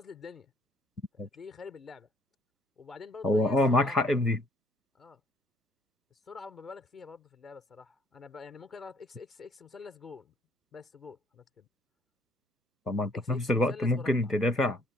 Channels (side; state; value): both; normal; correlation 0.63